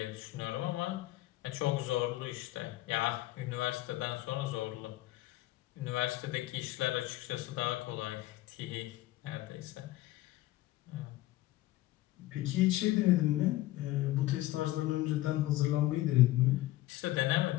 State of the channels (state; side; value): quieter; right; 16.6 dB